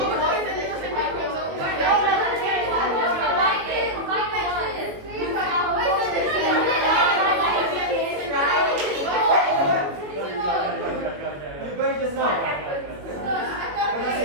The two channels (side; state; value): left; late; 21 ms